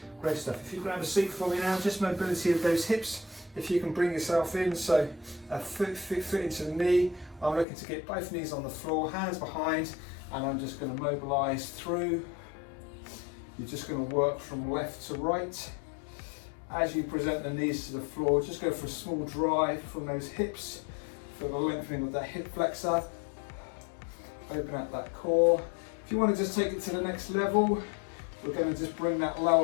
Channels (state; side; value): drops out; right; at 7.7 s